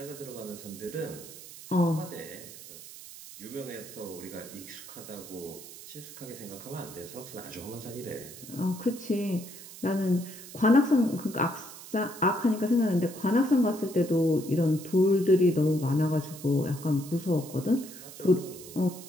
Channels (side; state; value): right; noise; hiss, 15 dB below the sound